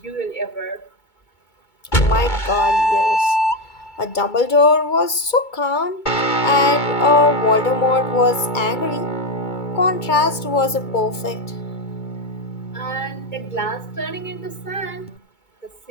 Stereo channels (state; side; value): late; right; 2.2 ms